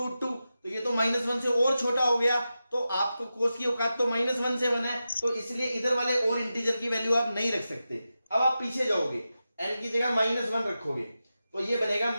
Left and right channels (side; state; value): both; inverted; correlation -0.92